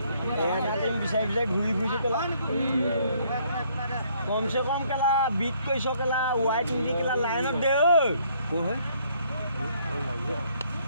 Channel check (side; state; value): both; inverted; correlation -0.65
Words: বিচাৰি বিচাৰি ঘূৰি ফুৰিছোঁ কেলা কমচে কম কেলা বিট কৰিছ কেলা ৱাইট নিদি কেলা লাইনত দে ঐ হয়